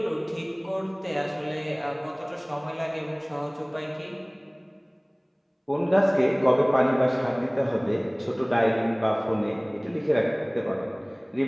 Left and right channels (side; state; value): both; identical; correlation 1.00